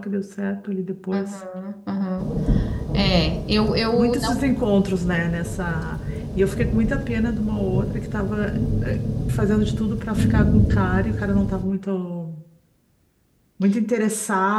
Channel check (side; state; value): both; identical; correlation 1.00